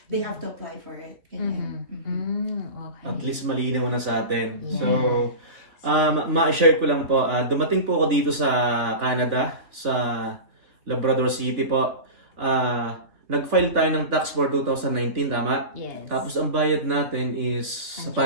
They have to apply for it. Ganyan. Okay. At least malinaw na sa atin. Yeah. So, ma-share ko lang po, dumating po ako dito sa Canada, sa Labrador City po. Nag-file tayo ng tax for 2019, tama? Yes. Tapos ang bayad natin is sa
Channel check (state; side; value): late; left; 3.0 ms